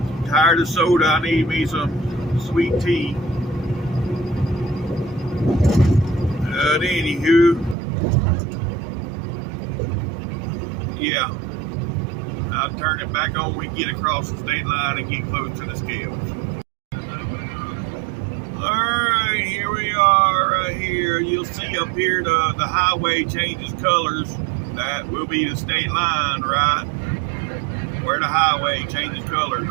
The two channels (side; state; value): left; drops out; at 7.8 s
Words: Tired of soda, I need me some sweet tea. But anywho, yeah, I'll turn it back on when we get across the state line and get close to the scales. Alright, here we are right here. You'll see up here the highway changes colors. That will be the state line, right? Where the highway changes colors,